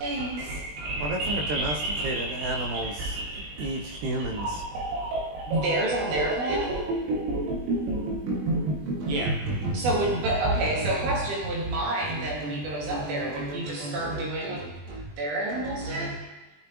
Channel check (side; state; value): left; late; 20 ms